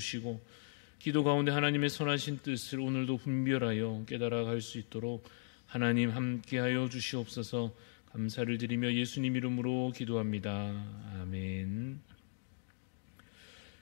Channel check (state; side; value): silent; right; digital silence